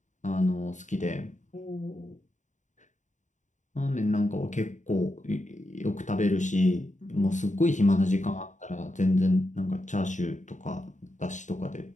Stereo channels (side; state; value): right; late; 0.36 ms